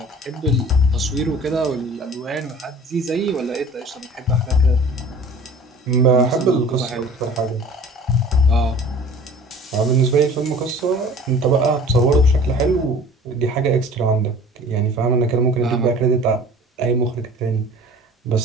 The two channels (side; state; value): both; normal; correlation 0.46